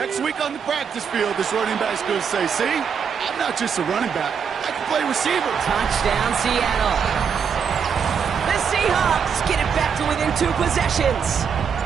week on the practice field, this running back's going to say, see, I'm not just a running back, I can play receiver. Touchdown, Seattle. Seahawks get it back to within 2 possessions.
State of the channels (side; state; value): left; quieter; 6.8 dB